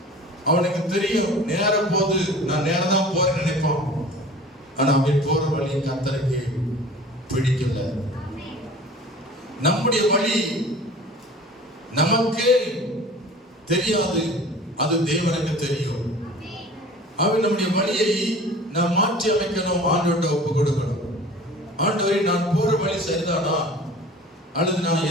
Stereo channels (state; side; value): normal; both; correlation 0.42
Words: அவனுக்கு தெரியும் நேர போது நான் நேரம் தான் போறேன்னு நினைப்பான். ஆனா அவன் போற வழி கர்த்தருக்கு பிடிக்கல. நம்முடைய வழி நமக்கே தெரியாது, அது தேவனுக்கு தெரியும். அவன் நம்முடைய வழியை நாம் மாற்றி அமைக்கணும், ஆண்டவர்கிட்ட ஒப்பு கொடுக்கணும். ஆண்டவரே, நான் போற வழி சரிதானா, அல்லது நான்